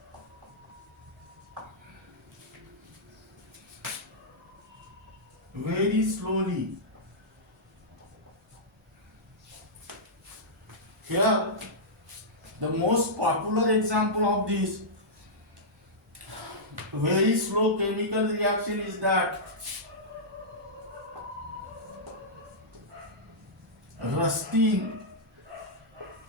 very slowly. Here, the most popular example of this very slow chemical reaction is that rusting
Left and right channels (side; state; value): both; normal; correlation -0.12